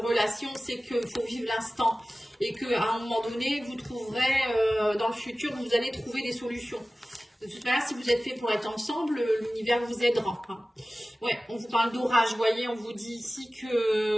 relation, c'est qu'il faut vivre l'instant. Et qu'à un moment donné, vous trouverez, dans le futur, vous allez trouver des solutions. De toute manière, si vous êtes fait pour être ensemble, l'univers vous aidera. Hein. Ouais, on vous parle d'orage, vous voyez, on vous dit ici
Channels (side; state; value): both; normal; correlation 0.97